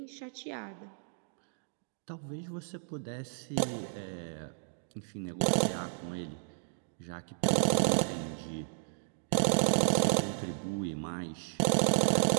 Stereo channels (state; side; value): silent; left; digital silence